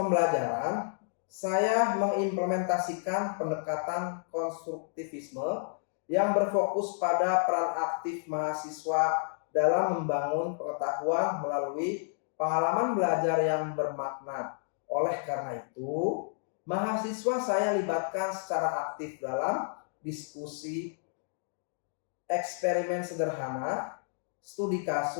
saya mengimplementasikan pendekatan konstruktivisme yang berfokus pada peran aktif mahasiswa dalam membangun pengetahuan melalui pengalaman belajar yang bermakna. Oleh karena itu, mahasiswa saya libatkan secara aktif dalam diskusi, eksperimen sederhana, studi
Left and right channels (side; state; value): right; silent; digital silence